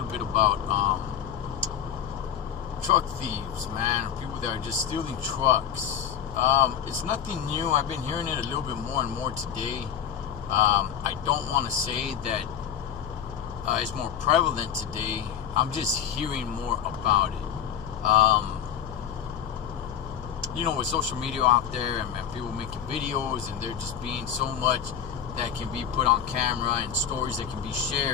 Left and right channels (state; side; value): quieter; right; 8.9 dB